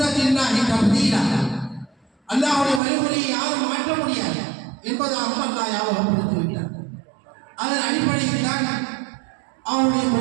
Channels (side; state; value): left; drops out; at 2.8 s